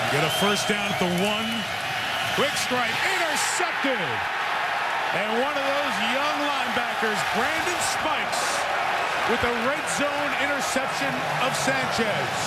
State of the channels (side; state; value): both; identical; correlation 1.00